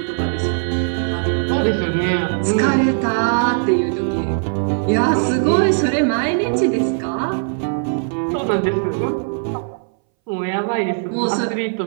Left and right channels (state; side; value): silent; left; 63 dB below the other